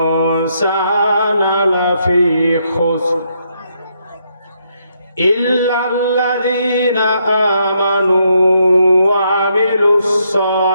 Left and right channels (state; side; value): inverted; both; correlation -0.76